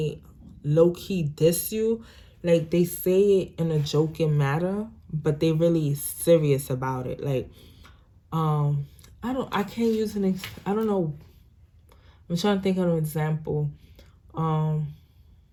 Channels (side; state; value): both; identical; correlation 1.00